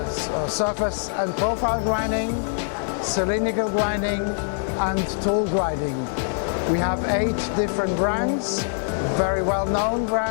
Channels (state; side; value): silent; right; digital silence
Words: surface and profile grinding, cylindrical grinding and tool grinding. We have 8 different brands, very well-known